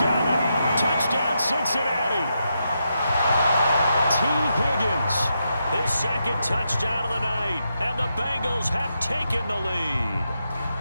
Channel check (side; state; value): both; inverted; correlation -0.84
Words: it. Touchdown, Cincinnati. T. Higgins, his second touchdown of the night, and the Bengals have taken the lead.